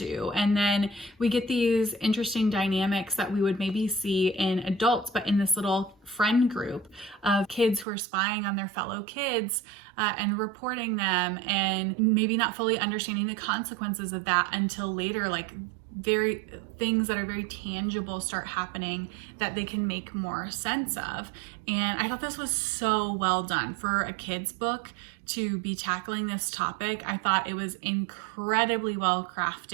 And then we get these interesting dynamics that we would maybe see in adults, but in this little friend group of kids who are spying on their fellow kids and reporting them, and maybe not fully understanding the consequences of that until later, like very things that are very tangible start happening that they can make more sense of. And I thought this was so well done for a kid's book to be tackling this topic. I thought it was incredibly well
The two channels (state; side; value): drops out; left; at 7.9 s